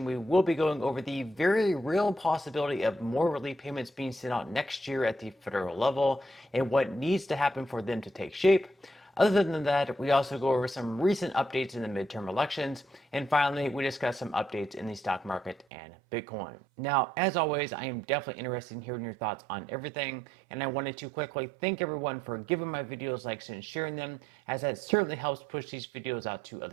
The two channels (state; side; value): drops out; left; at 15.7 s